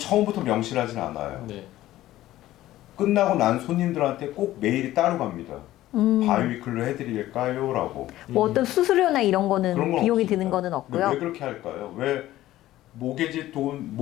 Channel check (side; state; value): right; quieter; 15.0 dB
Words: 명시하진 않아요. 네. 끝나고 난 손님들한테 꼭 메일이 따로 갑니다. 바이위클로 해드릴까요? 라고. 뭐 어떤 수수료나 이런 거는 그런 건 비용이 없습니다. 드는 거는 근데 없고요. 왜 그렇게 할까요? 왜 모게지